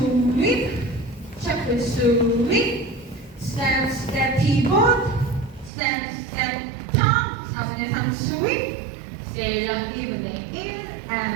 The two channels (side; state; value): left; drops out; at 5.7 s